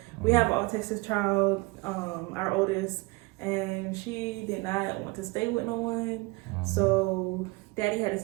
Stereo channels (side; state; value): left; quieter; 24.4 dB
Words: We have an autistic child, our oldest, and she did not want to stay with no one. So Daddy had to